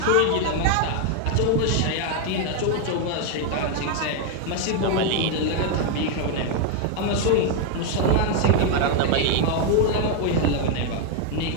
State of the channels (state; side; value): different; both; correlation 0.01